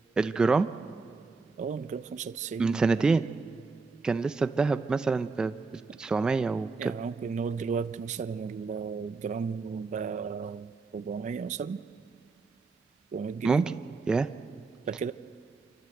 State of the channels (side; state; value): left; quieter; 4.2 dB